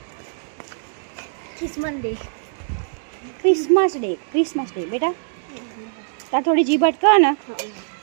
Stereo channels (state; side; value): silent; left; digital silence